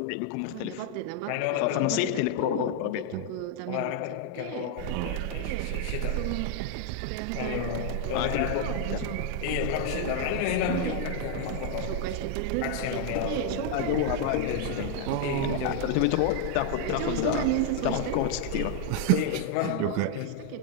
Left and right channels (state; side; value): different; both; correlation 0.00